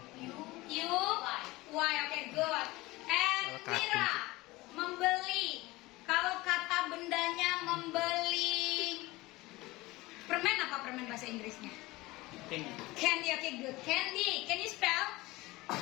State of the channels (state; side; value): quieter; right; 20.5 dB